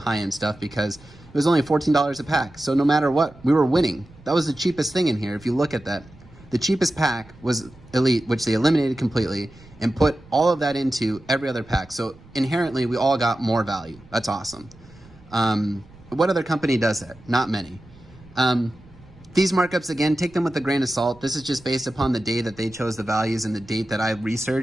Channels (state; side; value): noise; right; rumble, 24 dB below the sound